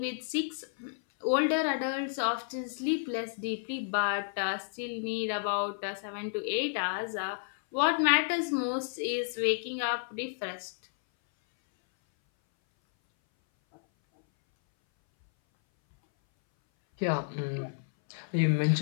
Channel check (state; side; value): silent; right; 57 dB below the other